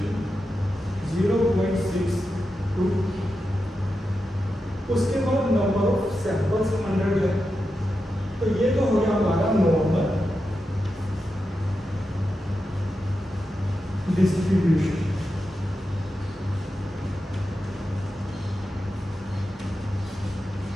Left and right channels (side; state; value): both; normal; correlation 0.89